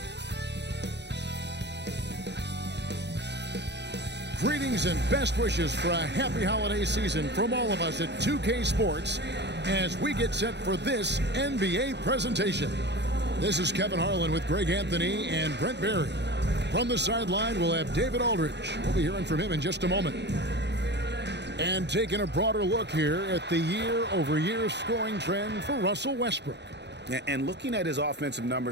Greetings and best wishes for a happy holiday season from all of us at 2K Sports as we get set for this NBA presentation. This is Kevin Harlan with Greg Anthony and Brent Barry. From the sideline, we'll have David Aldridge. We'll be hearing from him in just a moment. And taking a broader look here at the year-over-year scoring trend for Russell Westbrook. And looking at his offensive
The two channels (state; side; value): late; left; 0.50 ms